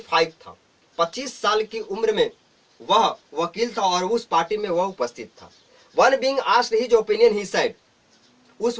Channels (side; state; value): both; identical; correlation 1.00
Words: था। 25 साल की उम्र में वह वकील था और उस पार्टी में वह उपस्थित था। One being asked his opinion, he said, उस